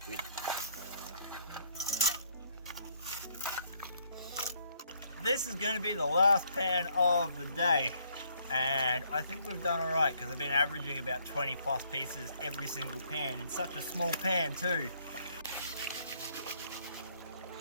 Good. This is going to be the last pan of the day, and I think we've done alright because I've been averaging about 20 plus pieces every single pan in such a small pan too.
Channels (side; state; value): both; inverted; correlation -0.67